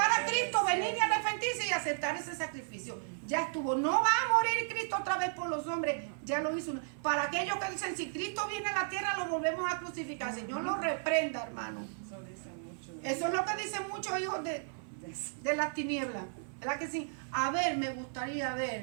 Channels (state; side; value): silent; left; 55 dB below the other